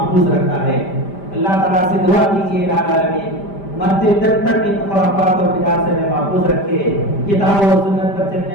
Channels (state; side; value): late; right; 5.1 ms